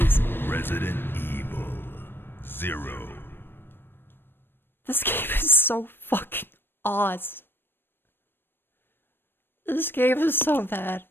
Resident Evil 0. This game is so fucking awesome. This game is so bad.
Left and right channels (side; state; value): right; late; 0.099 ms